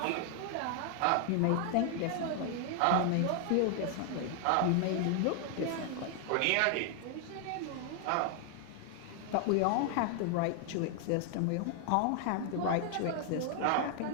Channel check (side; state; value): both; different; correlation 0.00